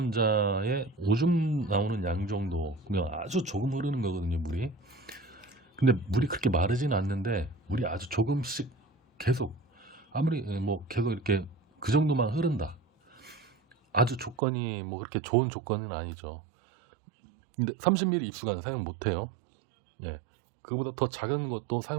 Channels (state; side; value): drops out; left; at 14.4 s